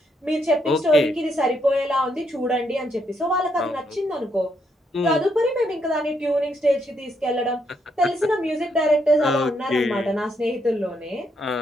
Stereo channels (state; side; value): normal; both; correlation 0.76